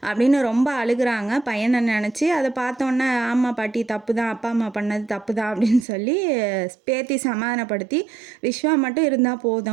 அப்படின்னு ரொம்ப அழுகுறாங்க பையனை நினச்சி. அதை பார்த்தோன்னே ஆமாம் பாட்டி தப்பு தான், அப்பா அம்மா பண்ணது தப்பு தான் அப்படின்னு சொல்லி பேத்தி சமாதானப்படுத்தி விஸ்வா மட்டும் இருந்தால்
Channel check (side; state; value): left; drops out; at 5.9 s